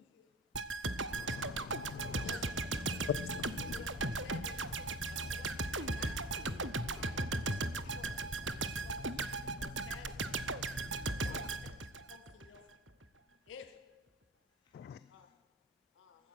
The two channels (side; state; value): both; normal; correlation 0.39